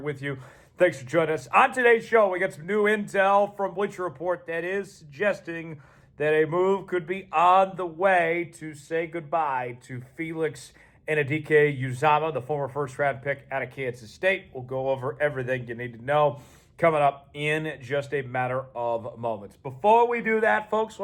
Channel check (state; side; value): identical; both; correlation 1.00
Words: you. Thanks for joining us. On today's show, we got some new intel from Bleacher Report that is suggesting that a move could be on the way to say goodbye to Felix Anudike-Uzomah, the former first-round pick out of Kansas State. We'll go over everything you need to know coming up in just a matter of moments. Before we do that, folks,